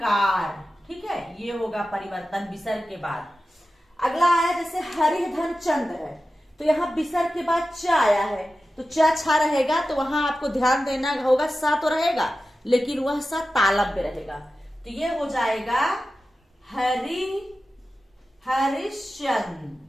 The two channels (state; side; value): normal; both; correlation 0.93